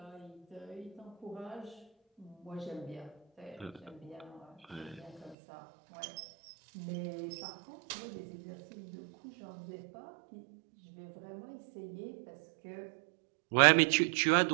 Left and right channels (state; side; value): drops out; left; at 5.4 s